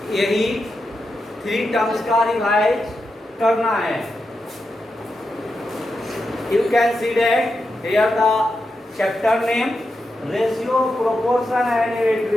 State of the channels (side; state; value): both; normal; correlation 0.88